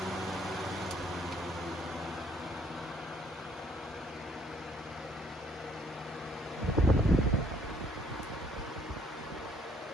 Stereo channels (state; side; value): normal; both; correlation 0.64